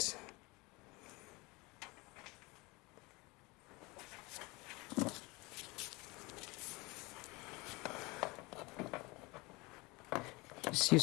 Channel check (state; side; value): quieter; right; 24.6 dB